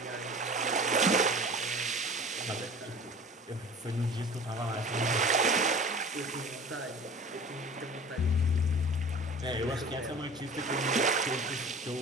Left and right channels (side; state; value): both; normal; correlation 0.41